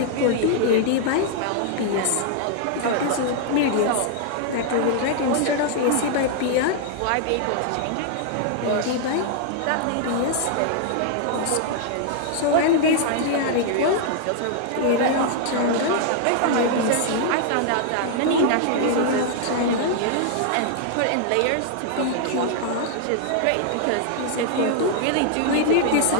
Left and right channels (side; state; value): both; different; correlation 0.00